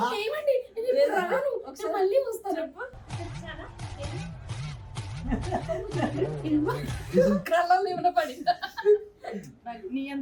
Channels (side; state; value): both; identical; correlation 1.00